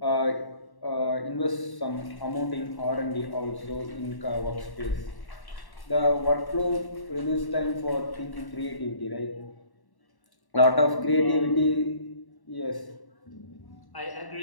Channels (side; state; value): right; late; 1.1 ms